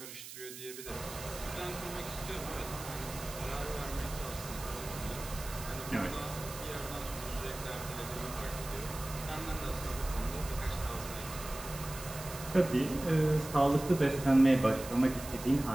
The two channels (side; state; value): right; noise; hiss, 12 dB below the sound